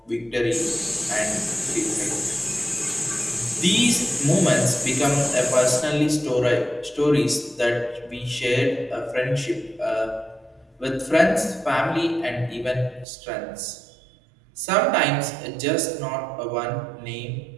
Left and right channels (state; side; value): drops out; left; at 13.1 s